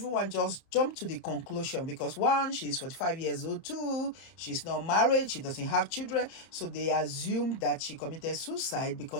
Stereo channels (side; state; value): right; late; 30 ms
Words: jumped to the conclusion because one, she's 45 years old, two, she's not married, she doesn't have children, so they assumed that she committed suicide